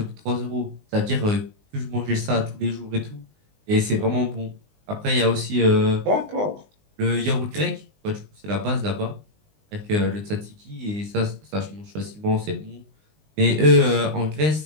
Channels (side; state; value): left; late; 19 ms